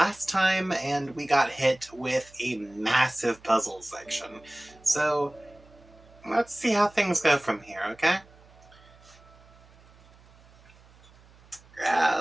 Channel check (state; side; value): noise; right; hum, 26 dB below the sound